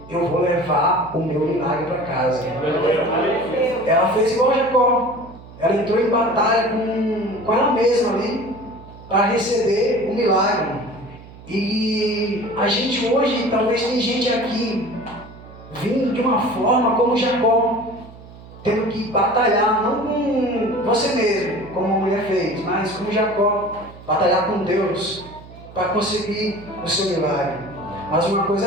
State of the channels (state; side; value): noise; right; hum, 19 dB below the sound